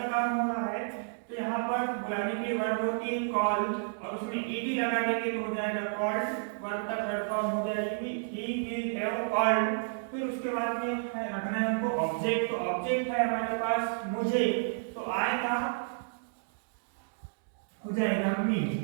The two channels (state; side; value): silent; left; digital silence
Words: काम हो रहा है, तो यहाँ पर बुलाने के लिए वर्ब होती है कॉल, और उसमें ईडी लगा देंगे तो हो जाएगा कॉल्ड। वर्ब का थर्ड फॉर्म हो जाएगी ही विल हैव कॉल्ड। फिर उसके बाद में रखना है हमको ऑब्जेक्ट, तो ऑब्जेक्ट है हमारे पास मुझे, तो आई का हो जाएगा मी।